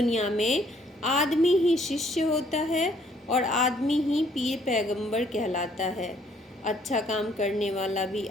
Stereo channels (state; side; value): normal; both; correlation 0.64